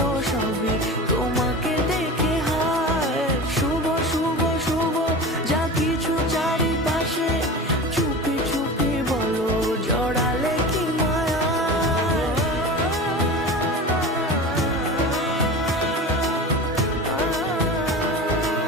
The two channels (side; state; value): both; normal; correlation 0.31